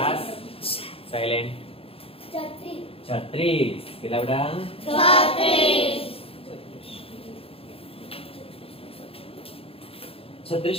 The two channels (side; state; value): right; late; 0.27 ms